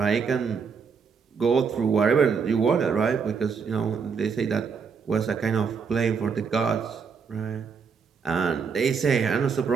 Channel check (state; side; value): quieter; left; 5.8 dB